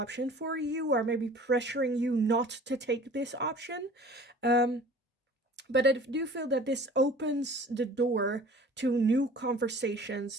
for you, or maybe pressuring you not to take this option. But I do feel that this opens the door to new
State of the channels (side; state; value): both; normal; correlation 0.46